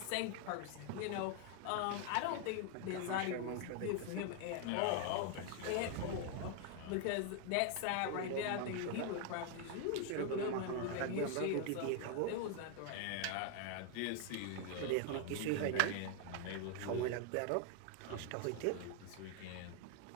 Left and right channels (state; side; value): different; both; correlation 0.00